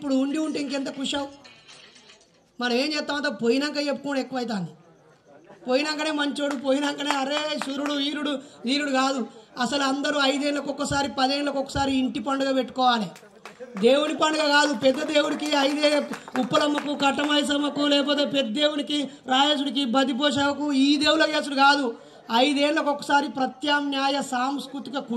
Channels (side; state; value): both; identical; correlation 1.00